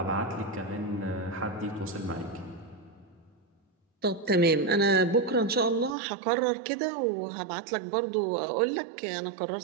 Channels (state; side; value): drops out; left; at 6.0 s